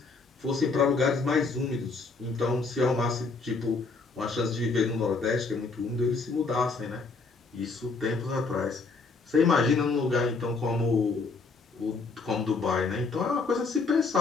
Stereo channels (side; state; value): right; quieter; 4.2 dB